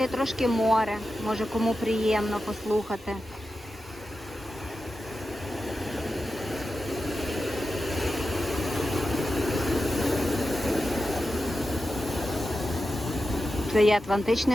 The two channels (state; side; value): normal; both; correlation 0.91